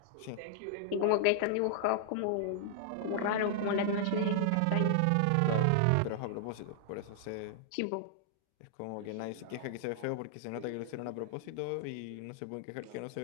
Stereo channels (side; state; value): both; different; correlation -0.01